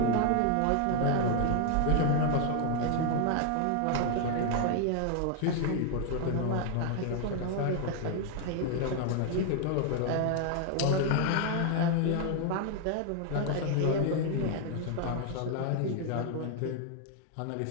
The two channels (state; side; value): different; both; correlation 0.00